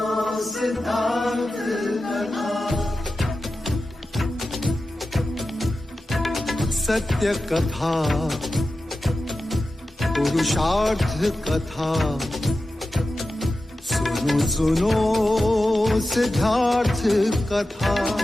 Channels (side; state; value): both; normal; correlation 0.93